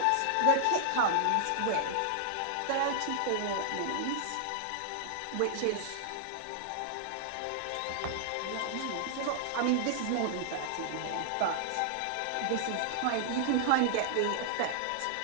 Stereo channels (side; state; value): both; different; correlation -0.01